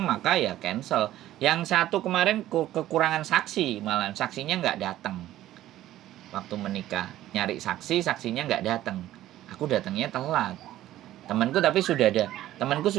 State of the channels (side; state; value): left; quieter; 13.9 dB